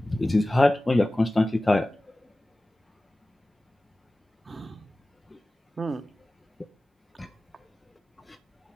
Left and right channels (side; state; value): both; normal; correlation 0.96